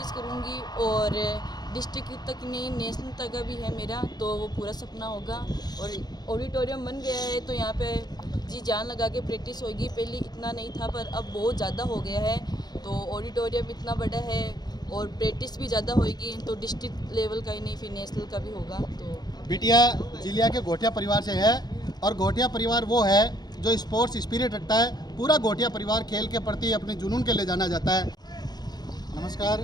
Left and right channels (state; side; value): late; right; 0.20 ms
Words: करूँगी और डिस्ट्रिक्ट तक नहीं, नेशनल तक भी है मेरा, तो वो पूरा सपना होगा। और ऑडिटोरियम बन गया है तो यहाँ पे जी जान लगा के प्रैक्टिस होगी। पहले इतना नहीं था पर अब बहुत ज़्यादा हो गया है। तो ऑडिटोरियम इतना बड़ा है और प्रैक्टिस भी ज़्यादा होगी, तो डिस्ट्रिक्ट लेवल का ही नहीं फिर नेशनल का भी होगा। तो बिटिया जिलिया के घोटिया परिवार से है और घोटिया परिवार वो है जो स्पोर्ट्स स्पिरिट रखता है। पूरा घोटिया परिवार खेल के प्रति अपने जुनून के ले जाना जाता है। नमस्कार,